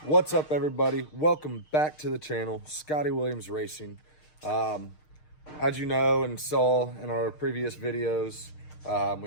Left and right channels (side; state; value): right; late; 6.5 ms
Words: What's up, everybody? Welcome back to the channel, Scotty Williams Racing. As you know and saw in our previous videos,